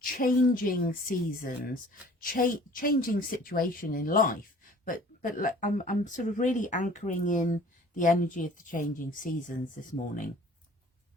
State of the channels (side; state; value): both; normal; correlation 0.50